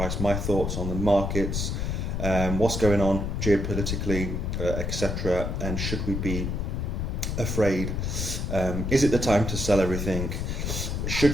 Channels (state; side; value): noise; left; rumble, 1 dB below the sound